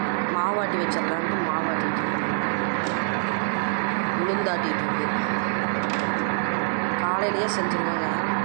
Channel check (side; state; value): left; silent; 62 dB below the other